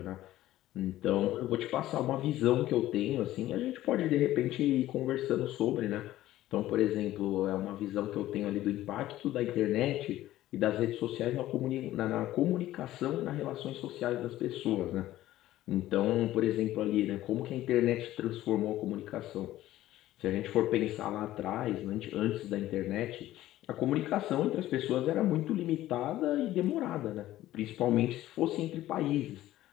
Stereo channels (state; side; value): quieter; right; 14.7 dB